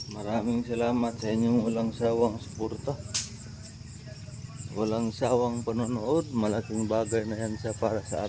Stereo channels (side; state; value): both; identical; correlation 1.00